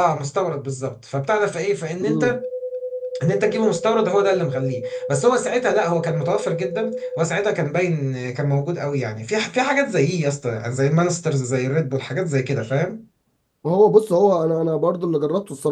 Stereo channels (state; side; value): identical; both; correlation 1.00